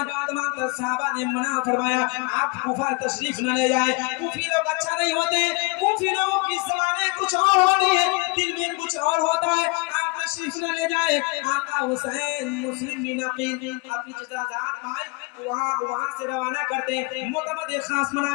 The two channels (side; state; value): right; quieter; 28.3 dB